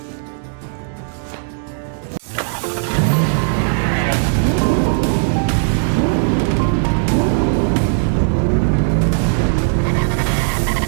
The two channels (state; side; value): silent; left; 68 dB below the other